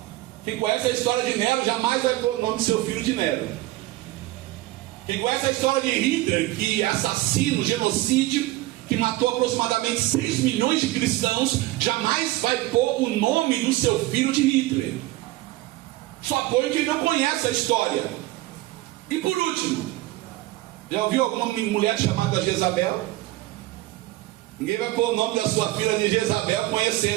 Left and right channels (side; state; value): left; quieter; 17.6 dB